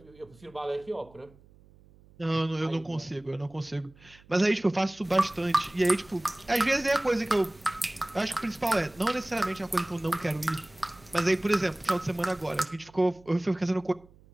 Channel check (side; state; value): right; noise; hum, 26 dB below the sound